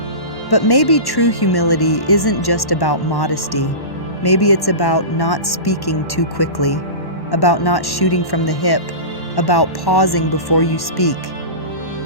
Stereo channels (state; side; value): late; right; 1.1 ms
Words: But maybe true humility isn't just about modesty. Maybe it's about not speaking too quickly, about not shooting from the hip, about pausing before you speak.